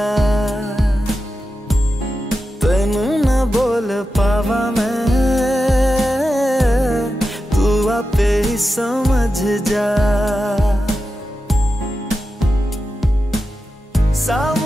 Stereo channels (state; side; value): normal; both; correlation 0.91